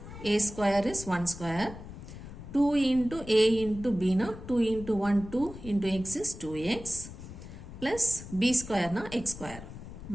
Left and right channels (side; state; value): left; noise; rumble, 13 dB below the sound